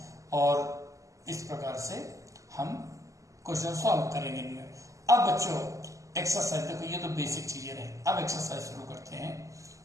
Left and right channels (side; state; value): left; late; 0.16 ms